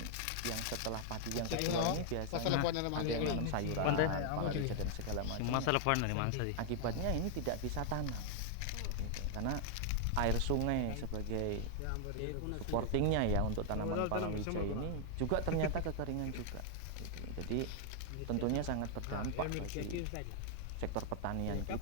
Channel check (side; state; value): both; different; correlation 0.00